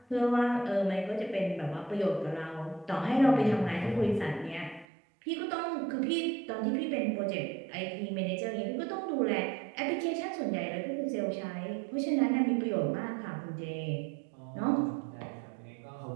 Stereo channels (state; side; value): drops out; left; at 4.9 s